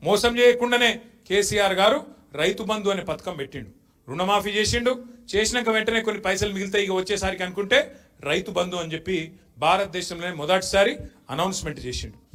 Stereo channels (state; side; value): identical; both; correlation 1.00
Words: మోసం చేయకుండానే కేసీఆర్ గారు రైతు బంధు అనే పథకం పెట్టిండు. రుణమాఫీ చేసిండు. చేసినాక వెంటనే కొన్ని పైసలు మిగులుతాయి ఇక వచ్చేసరికి అనుకుంటే రైతు బంధు అని చెప్పి భారతదేశంలోనే మొదటిసారి అనౌన్స్మెంట్ చేసిండు.